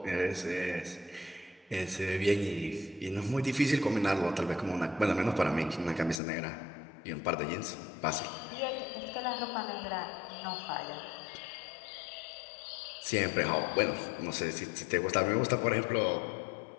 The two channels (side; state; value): right; drops out; at 6.2 s